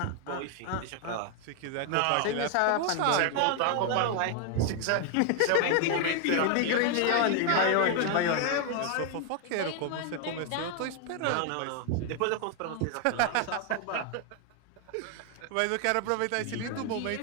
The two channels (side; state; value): both; different; correlation 0.00